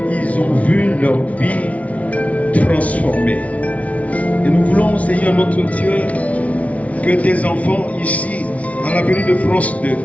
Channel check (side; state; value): right; late; 0.067 ms